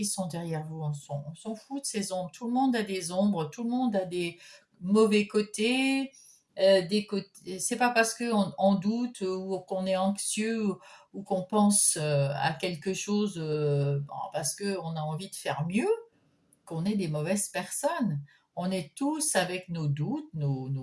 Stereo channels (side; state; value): both; identical; correlation 1.00